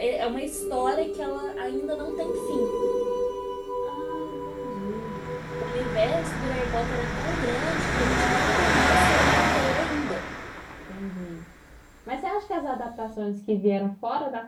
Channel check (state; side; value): identical; both; correlation 1.00